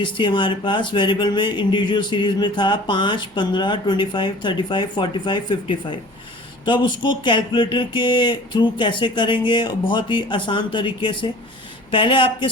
थी हमारे पास। वेरिएबल में इंडिविजुअल सीरीज में था 5, 15, 25, 35, 45, 55। तो अब उसको कैलकुलेटर के थ्रू कैसे करेंगे? बहुत ही आसान तरीके से। पहले आपके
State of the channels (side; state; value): right; noise; hum, 30 dB below the sound